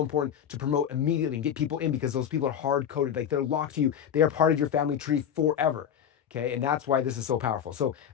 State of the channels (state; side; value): quieter; right; 8.8 dB